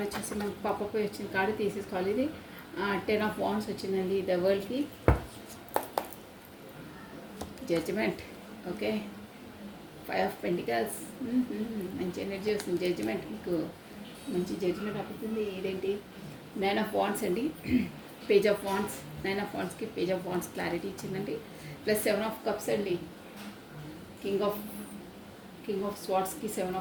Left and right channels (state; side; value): identical; both; correlation 1.00